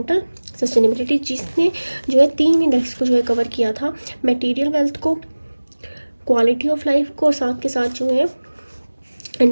sustainability, जिसने जो है 3 इंडेक्स को जो है कवर किया था, मटेरियल वेल्थ को, क्वालिटी ऑफ लाइफ को, और साथ के साथ जो है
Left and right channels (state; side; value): inverted; both; correlation -1.00